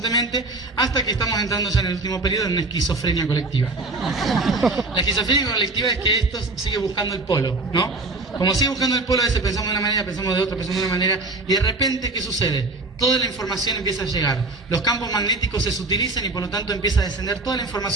hasta que estamos entrando ya en el último periodo en una esquizofrenia colectiva. La esquizofrenia colectiva es que esto sigue buscando el polo, ¿no? Como sigue buscando el polo, a veces pensamos de una manera, pensamos de otra, pensamos de una manera, y de repente, ¿qué sucede? Toda la información empieza a llegar, los campos magnéticos se sutilizan y por lo tanto empieza a descender toda la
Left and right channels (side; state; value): left; quieter; 3.2 dB